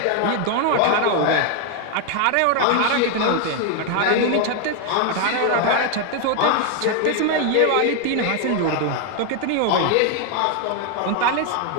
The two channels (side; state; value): both; different; correlation 0.01